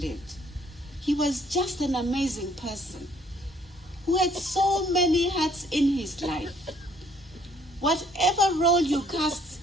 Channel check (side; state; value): both; normal; correlation 0.63